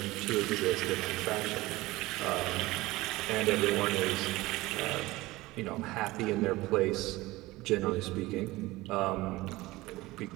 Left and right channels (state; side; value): quieter; left; 19.6 dB